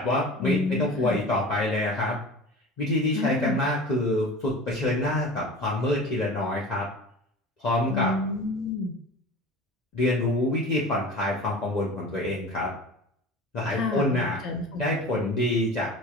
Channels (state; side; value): normal; both; correlation 0.37